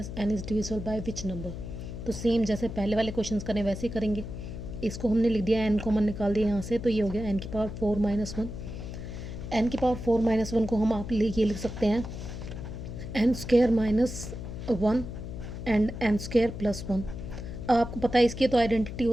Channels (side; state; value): left; noise; hum, 8 dB below the sound